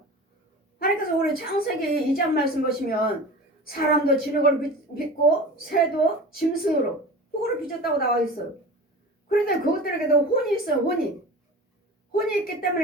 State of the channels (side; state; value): both; normal; correlation 0.34